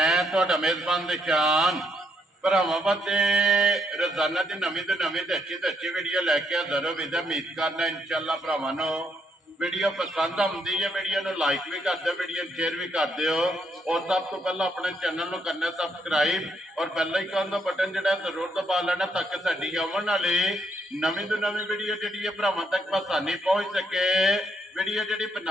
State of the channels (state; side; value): normal; both; correlation 0.74